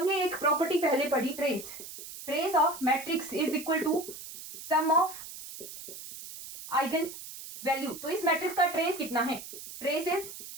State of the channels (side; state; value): right; noise; hiss, 12 dB below the sound